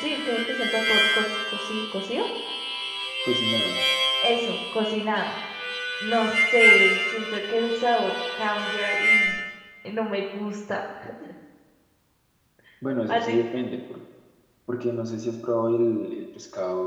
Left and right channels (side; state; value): both; identical; correlation 1.00